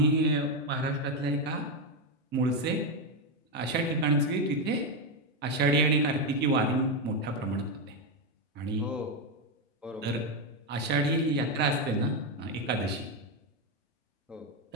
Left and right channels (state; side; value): normal; both; correlation 0.06